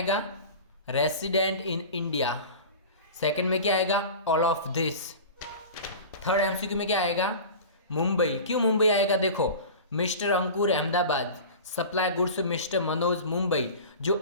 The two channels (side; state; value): both; inverted; correlation -0.35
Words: Resident in India. सेकंड में क्या आएगा? All of this. Third MCQ में क्या आएगा? मुंबई। क्यों मुंबई आएगा? देखो, mister Ankur Ahmedabad supply goods mister Manoj Mumbai. जो